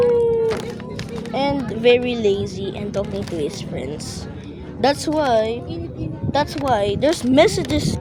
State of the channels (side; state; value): both; identical; correlation 1.00